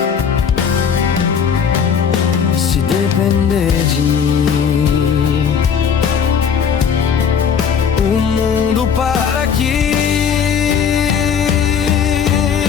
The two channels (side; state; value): right; quieter; 7.1 dB